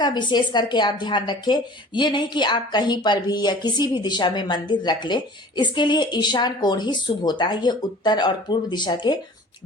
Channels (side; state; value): both; normal; correlation 0.45